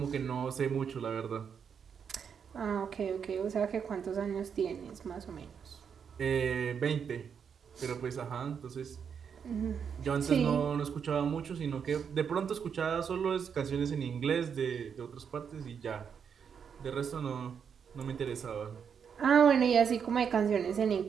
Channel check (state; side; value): quieter; left; 7.1 dB